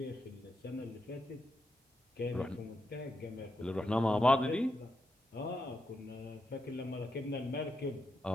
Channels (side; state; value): both; normal; correlation 0.84